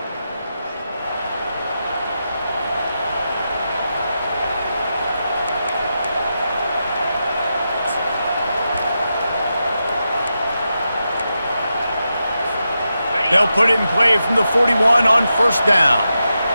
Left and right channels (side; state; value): both; inverted; correlation -0.88